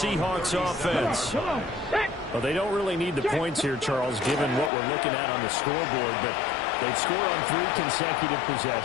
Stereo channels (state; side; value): drops out; right; at 4.7 s